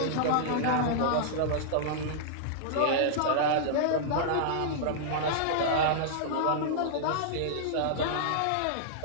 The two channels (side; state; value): both; different; correlation -0.02